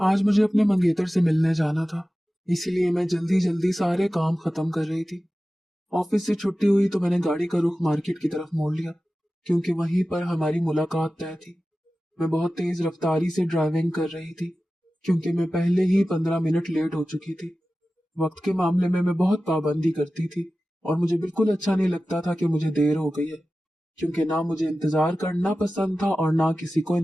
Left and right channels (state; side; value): normal; both; correlation 0.95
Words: मुझे अपने मंगेतर से मिलने जाना था, इसीलिए मैं जल्दी जल्दी सारे काम खत्म कर रही थी। ऑफिस से छुट्टी हुई तो मैंने गाड़ी का रुख मार्केट की तरफ मोड़ लिया, क्योंकि वहीं पर हमारी मुलाकात तय थी। मैं बहुत तेज रफ्तारी से ड्राइविंग कर रही थी, क्योंकि मैं पहले ही 15 मिनट लेट हो चुकी थी। वक्त के मामले में मैं बहुत पाबंदी करती थी और मुझे बिल्कुल अच्छा नहीं लगता था कि मुझे देर हो गई है, क्योंकि ना मुझे इंतजार करना पसंद था और ना किसी को